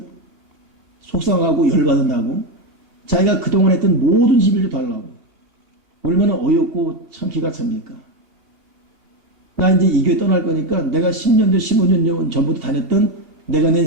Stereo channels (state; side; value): late; left; 2.7 ms